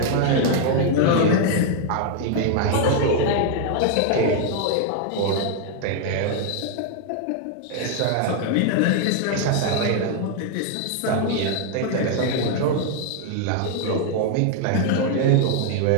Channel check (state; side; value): different; both; correlation 0.00